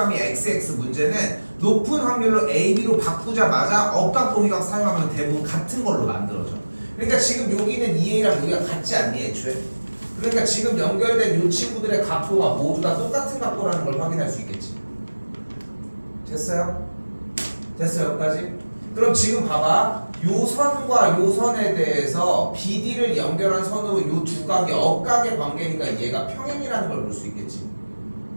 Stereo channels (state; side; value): inverted; both; correlation -1.00